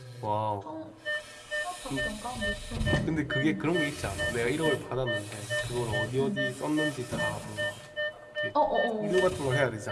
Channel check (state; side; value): identical; both; correlation 1.00